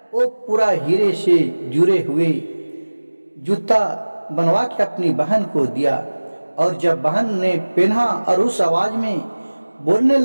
वो पूरा हीरे से जुड़े हुए जूता बनवा के अपनी बहन को दिया। और जब बहन ने पहना और उस आवाज में बोलने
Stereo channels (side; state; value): both; inverted; correlation -1.00